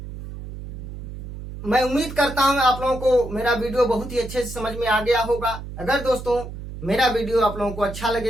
मैं उम्मीद करता हूं आप लोगों को मेरा वीडियो बहुत ही अच्छे से समझ में आ गया होगा। अगर दोस्तों मेरा वीडियो आप लोगों को अच्छा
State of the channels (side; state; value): right; noise; hum, 10 dB below the sound